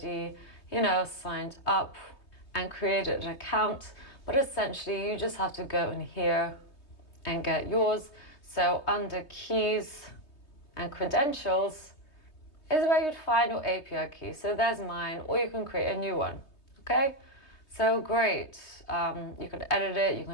signed up and created an account, but essentially you just have to go in here and get yours. So under keys and credentials is where you'd find your API key. So there's mine, or you can create a new one. Okay, so great. You can edit it, you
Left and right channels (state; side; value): late; right; 3.2 ms